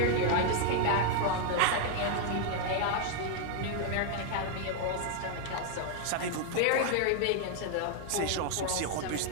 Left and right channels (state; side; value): different; both; correlation 0.00